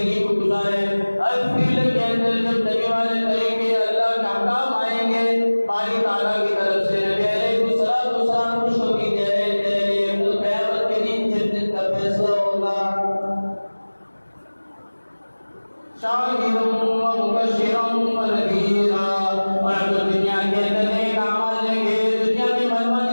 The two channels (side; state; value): both; inverted; correlation -1.00